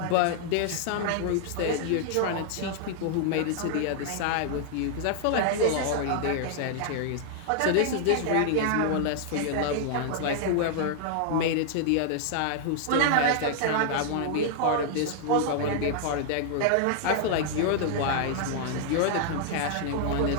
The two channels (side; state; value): both; different; correlation -0.01